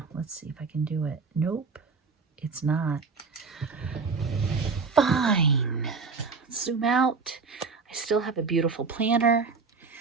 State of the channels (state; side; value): quieter; left; 4.7 dB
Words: Let's see if I can do it. Nope, it's not. Fine. Zoom out. I still have a beautiful planner.